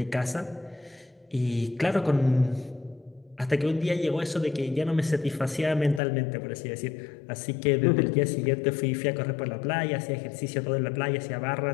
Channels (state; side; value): drops out; right; at 6.0 s